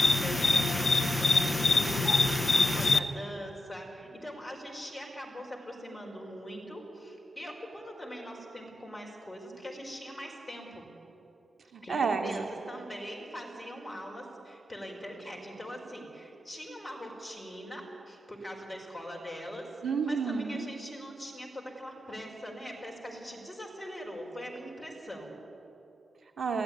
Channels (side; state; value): both; normal; correlation 0.85